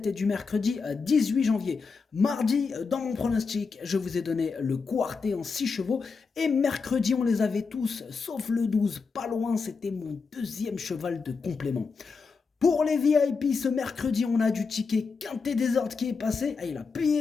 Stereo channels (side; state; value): right; quieter; 4.9 dB